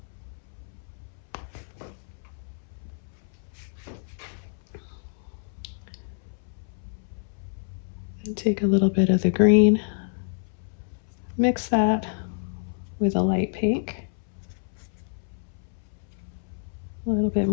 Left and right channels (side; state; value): right; silent; 59 dB below the other